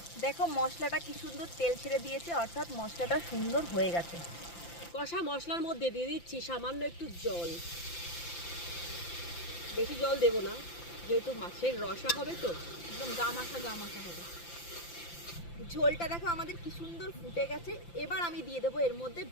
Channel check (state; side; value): late; right; 5.8 ms